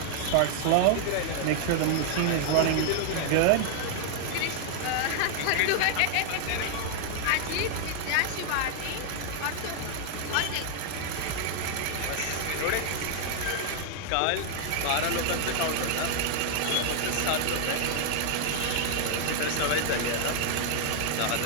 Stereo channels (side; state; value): both; different; correlation 0.00